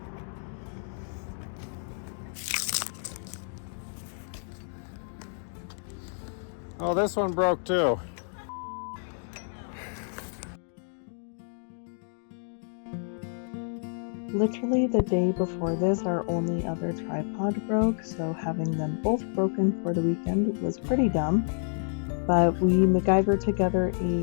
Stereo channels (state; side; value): silent; right; digital silence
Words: Oh, this one broke too. Literally the day before this, our only other tripod broke, so having them both broken for the weekend was pretty dumb. But we MacGyvered together